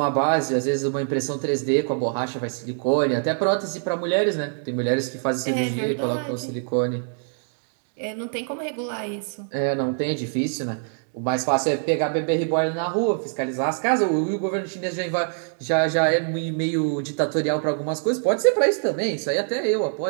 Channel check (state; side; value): silent; left; digital silence